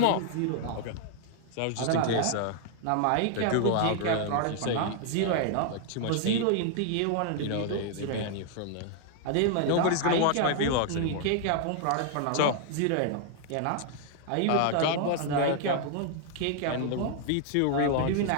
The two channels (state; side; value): different; both; correlation 0.00